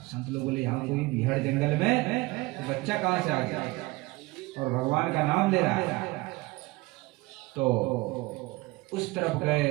संत लोग बोले, यहाँ कोई बिहड़ जंगल में तो बच्चा कहाँ से आ गया और भगवान का नाम ले रहा है? तो उस तरफ गए,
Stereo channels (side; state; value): left; quieter; 22.2 dB